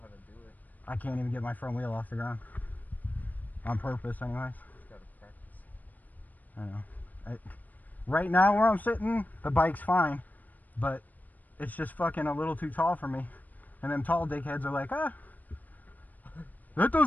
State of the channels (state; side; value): late; right; 0.082 ms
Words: how to do it. I can't even get my front wheel off the ground. On purpose, anyways. Just gotta practice. I know. Right now, where I'm sitting, the bike's fine, but it's just fucking a little too tall for me. And them tall dickheads are like, ah, that